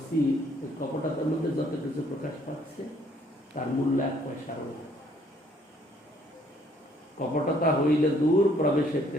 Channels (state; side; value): normal; both; correlation 0.64